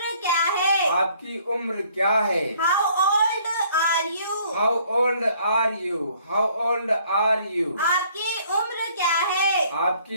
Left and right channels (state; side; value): inverted; both; correlation -0.61